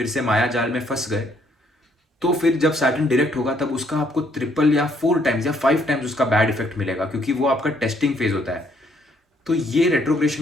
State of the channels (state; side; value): normal; both; correlation 0.68